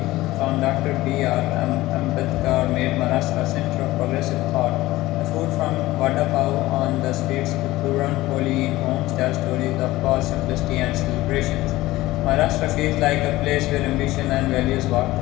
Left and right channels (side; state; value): right; quieter; 17.7 dB